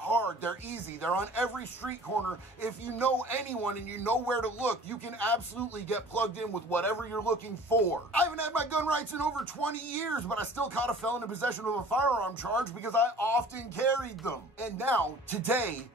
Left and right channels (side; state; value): both; normal; correlation 0.46